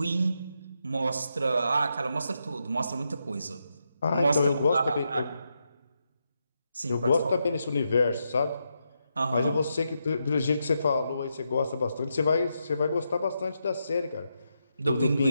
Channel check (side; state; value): both; inverted; correlation -0.83